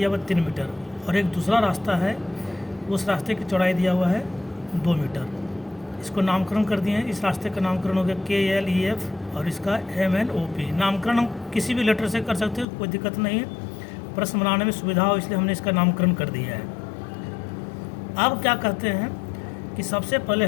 हुआ 3 मीटर, और एक दूसरा रास्ता है, उस रास्ते की चौड़ाई दिया हुआ है 2 मीटर। इसको नामकरण कर दिए हैं। इस रास्ते का नामकरण हो गया KLEF और इसका MNOP। नामकरण हम किसी भी लेटर से कर सकते हैं, कोई दिक्कत नहीं है। प्रश्न बनाने में सुविधा हो इसलिए हमने इसका नामकरण कर दिया है। अब क्या करते हैं कि सबसे पहले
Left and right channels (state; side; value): drops out; right; at 12.7 s